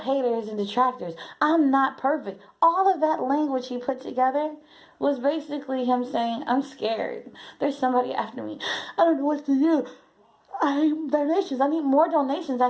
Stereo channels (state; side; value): identical; both; correlation 1.00